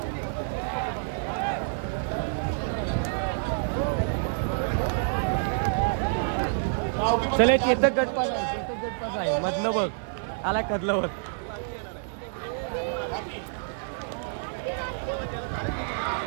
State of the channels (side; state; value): left; silent; digital silence